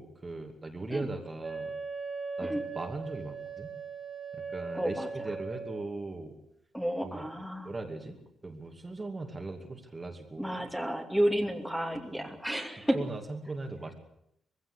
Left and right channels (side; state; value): both; normal; correlation 0.95